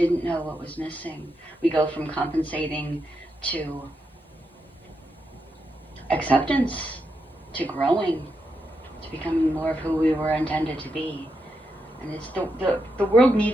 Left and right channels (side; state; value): both; normal; correlation 0.84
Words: know what was missing. We go from compensating to acceptance, to growing, to becoming more of who we were intended to be. And it's the world